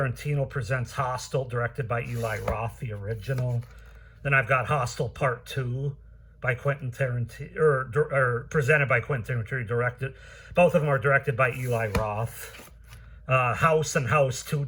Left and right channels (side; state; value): both; identical; correlation 1.00